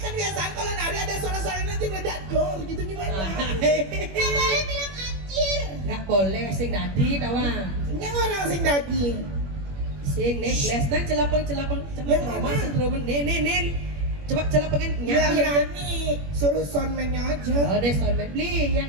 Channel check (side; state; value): left; late; 21 ms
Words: biasaan kalau nari ada suara-suara nanti meledak dor gitu gimana? Nggak boleh bilang anjir. Nggak boleh sing tadi tawang. Yang orang sing daging. Sing nih les nang celapeng coba Yang mama mana? sendromen nin. Coba celapengin Ya nyanyi. nyanyi, suruh soundman-nya aja. Oh, deh soalnya beli yang